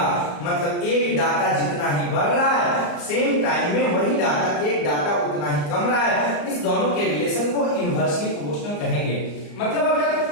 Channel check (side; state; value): right; late; 34 ms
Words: मतलब एक डाटा जितना ही बढ़ रहा है, सेम टाइम में वही डाटा, एक डाटा उतना ही कम रहा है। इस दोनों के रिलेशन को इनवर्सली प्रोपोर्शनल कहेंगे। मतलब अगर